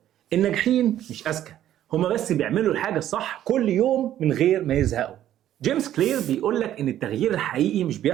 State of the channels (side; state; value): left; quieter; 11.9 dB